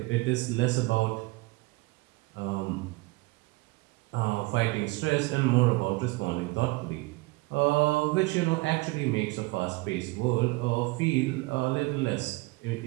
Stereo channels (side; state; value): left; quieter; 22.8 dB